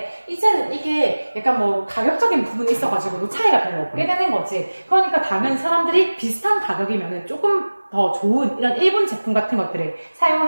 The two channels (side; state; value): both; inverted; correlation -1.00